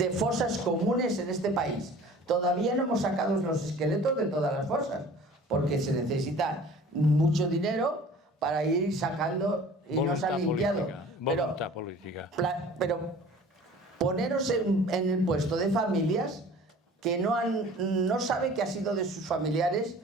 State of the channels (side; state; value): both; normal; correlation 0.46